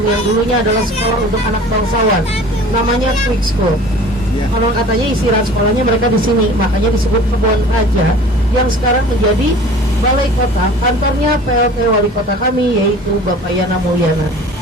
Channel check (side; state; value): both; normal; correlation 0.44